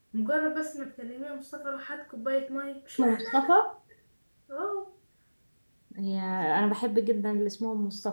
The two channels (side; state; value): both; inverted; correlation -1.00